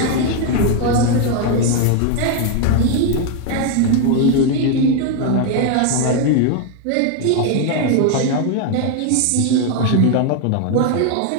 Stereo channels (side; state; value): both; different; correlation 0.01